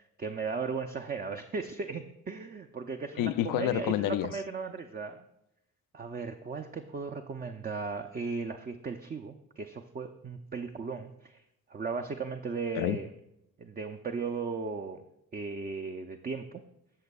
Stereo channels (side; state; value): both; normal; correlation 0.21